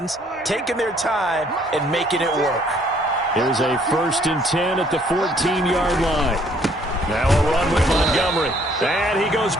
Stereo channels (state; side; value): normal; both; correlation 0.63